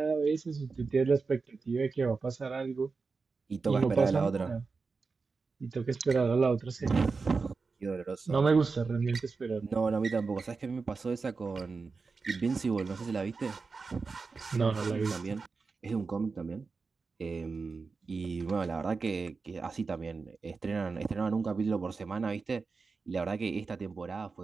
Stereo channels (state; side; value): quieter; left; 4.5 dB